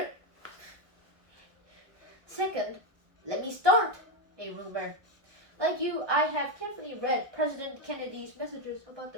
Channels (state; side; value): late; left; 1.1 ms